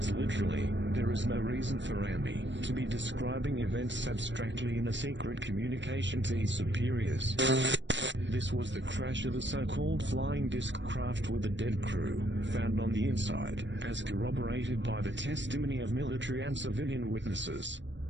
literally. There is no reason for Rami to be describing events abstractly in a secret communication to his superiors. This was the crash of the so-called flying disc craft with a dead crew, found on the inside, as corroborated by the testimony of military and civilian witnesses.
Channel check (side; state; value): left; late; 0.53 ms